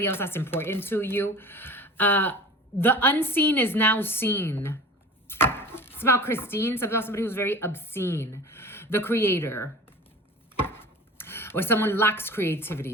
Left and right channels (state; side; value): normal; both; correlation 0.39